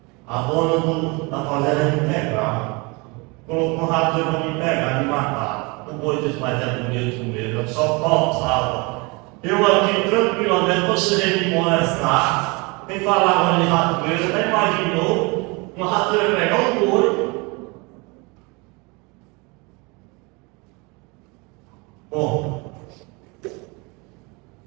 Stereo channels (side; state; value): left; quieter; 28.0 dB